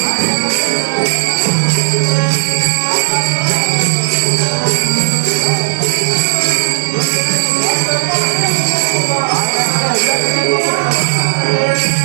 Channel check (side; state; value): left; silent; digital silence